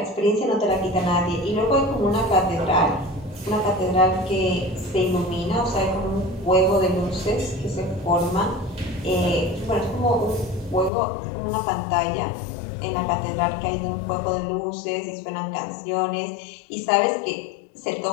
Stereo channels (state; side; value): drops out; right; at 10.9 s